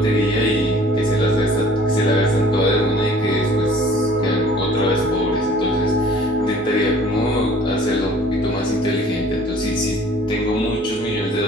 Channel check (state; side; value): normal; both; correlation 0.52